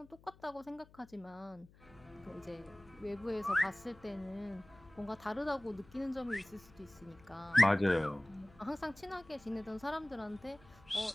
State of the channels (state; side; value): noise; left; hum, 25 dB below the sound